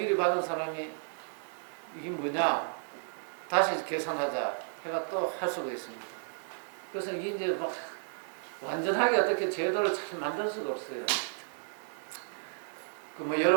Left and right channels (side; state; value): left; silent; digital silence